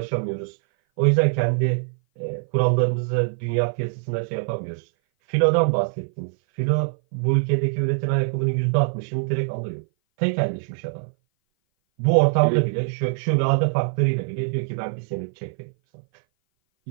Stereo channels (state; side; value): silent; left; 58 dB below the other